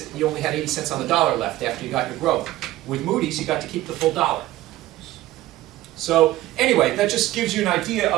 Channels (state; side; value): quieter; left; 16.0 dB